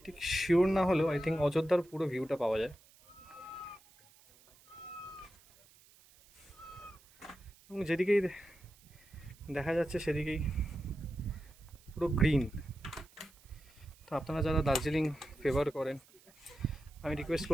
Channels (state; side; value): noise; right; hiss, 27 dB below the sound